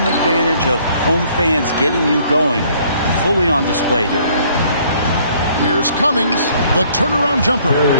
advantage of home fans getting you going fully on display here. Here's Cummings, the turnaround jumper.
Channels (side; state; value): both; inverted; correlation -0.61